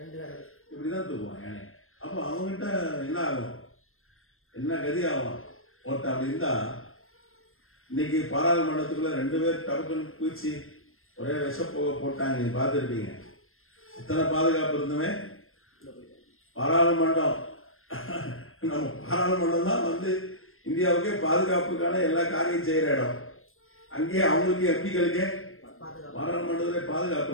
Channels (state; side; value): late; right; 0.61 ms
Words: இப்படிதான் தூக்குவான் யானை. அப்போ அவங்ககிட்ட என்ன ஆகும், என்ன கதி ஆகும்? ஒருத்தன் அப்படி இருந்தா இன்னைக்கு பாராளுமன்றத்துக்குள்ள 2 பேர் டபக்குன்னு பூச்சி ஒரே விஷப்போக போட்டாங்க, நீங்க பார்த்துருப்பீங்க. அத்தனை பாதுகாப்பு இருந்துமே பாராளுமன்றம், நம்ம பாராளுமன்றம் தான் வந்து இந்தியாவுக்கே பாதுகாப்புக்கான எல்லா காரியம் செய்யற இடம். அங்கேயே அவங்களுக்கு எம்பிக்களுக்கே பாராளுமன்றத்திலே பாதுகாப்பு